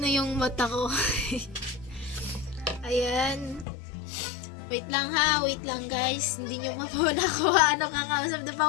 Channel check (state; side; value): drops out; right; at 3.7 s